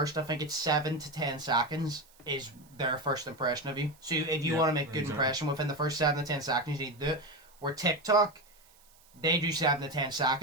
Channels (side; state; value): right; noise; hiss, 29 dB below the sound